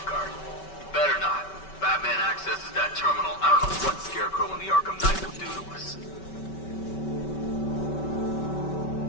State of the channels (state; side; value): late; right; 5.2 ms